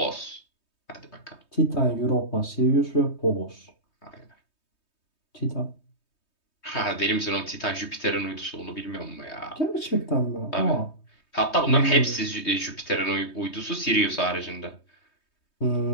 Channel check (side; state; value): right; late; 3.2 ms